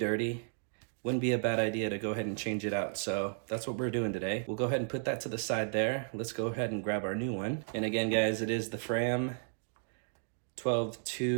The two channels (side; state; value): left; silent; digital silence